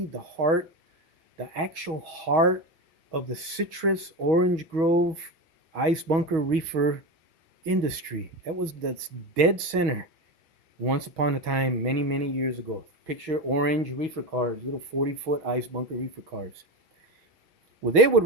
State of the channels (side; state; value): left; late; 6.3 ms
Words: the heart, the actual heart of the citrus orange grove ice bunker reefer industry. That was the dead center once upon a time, many, many years ago. Picture orange reefer cars, little 40-foot ice bunker reefer cars. Well, they would